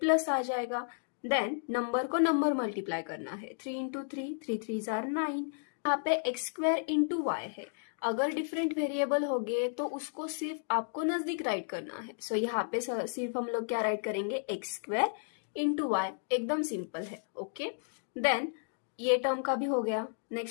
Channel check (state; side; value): silent; right; digital silence